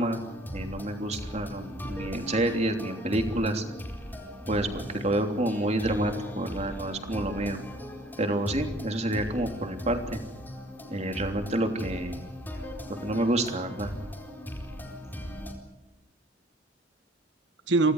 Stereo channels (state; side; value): normal; both; correlation 0.55